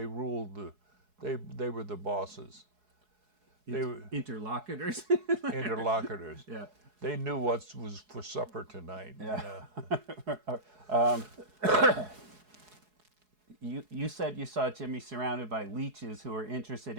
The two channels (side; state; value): left; late; 4.7 ms